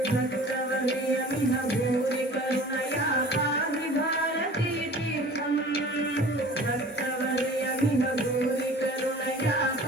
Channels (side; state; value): both; normal; correlation 0.44